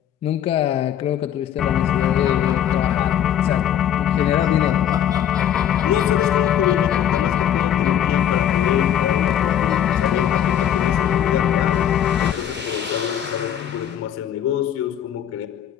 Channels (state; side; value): quieter; right; 10.0 dB